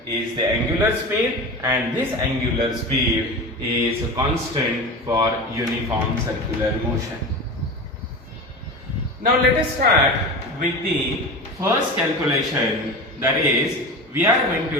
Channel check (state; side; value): normal; both; correlation 0.29